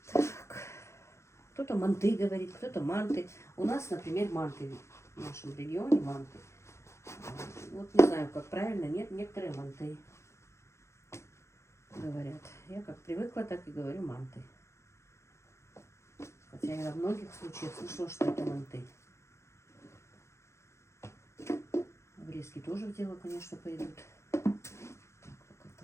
Так. Кто-то манты говорит, кто-то манты. У нас, например, манты. В нашем регионе манты. Вот не знаю, как правильно. Нет, некоторые манты говорят. Я как привыкла, так и говорю манты. Хотя я во многих случаях слышала, что это манты. Обрезки тоже в дело, конечно, пойдут. Так, пока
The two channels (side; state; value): right; late; 0.13 ms